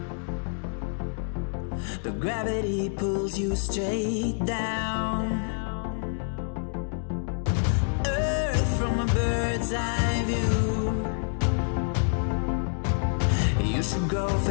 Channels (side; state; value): right; silent; 56 dB below the other